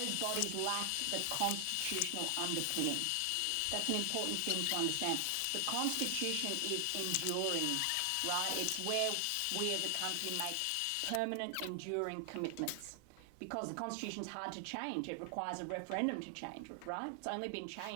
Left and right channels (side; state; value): both; different; correlation 0.00